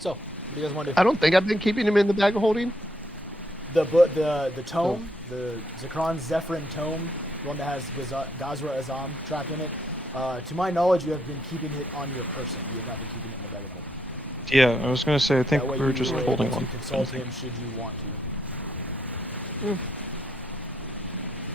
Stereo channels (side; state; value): both; normal; correlation 0.75